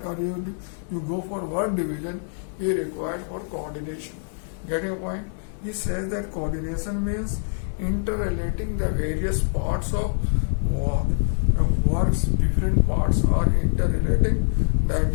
or you go for work division, you require for coordination. Getting a point? He says that coordination means interrelating the various parts of work. Work's different parts are interrelating. That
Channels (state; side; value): silent; right; digital silence